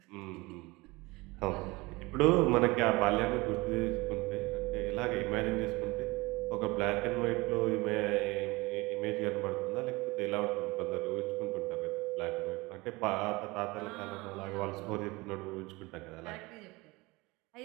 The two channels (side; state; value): left; quieter; 23.0 dB